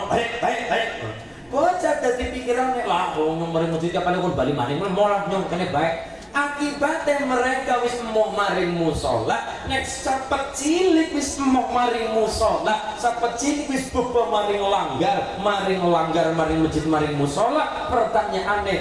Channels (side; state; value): both; identical; correlation 1.00